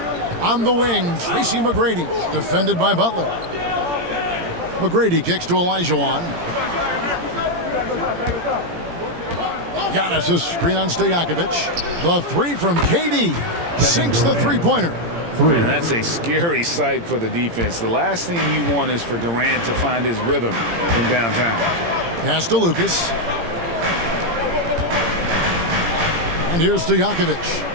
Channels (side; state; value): left; late; 17 ms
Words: On the wing, Tracy McGrady, defended by Butler. McGrady kicks to Olajuwon. Giannis' screen on Stojakovic. The three from KD. Sinks the three-pointer. Man, that's a scary sight for the defense. The last thing you want is for Durant to find his rhythm from downtown. Pass to Lucas. And here's Stojakovic.